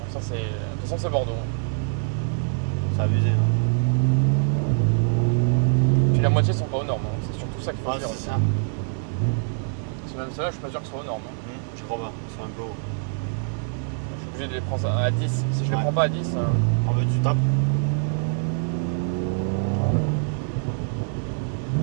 ça, c'est... De toute façon, c'est Bordeaux. c'est abusé. Hein. Puis la moitié sont pas aux normes. Hein. C'est surtout ça qu'il faut Ah, dire. c'est aussi. ça. Parce que même ceux-là, je suis pas sûr qu'ils soient aux normes. Hein. Je crois pas, ils sont un peu hauts. Je suis obligé de les prendre à 10. Si je les Ouais. prends pas à 10, En fait, tu tapes.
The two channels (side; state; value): left; silent; digital silence